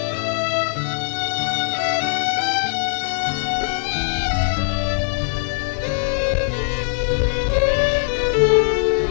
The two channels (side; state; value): right; silent; digital silence